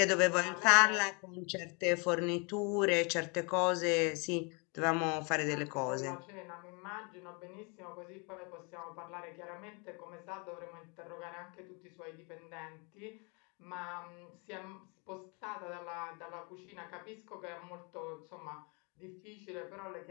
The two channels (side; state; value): right; quieter; 32.7 dB